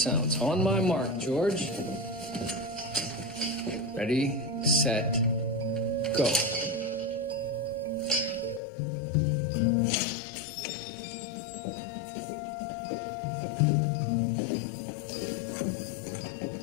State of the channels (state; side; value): drops out; right; at 8.6 s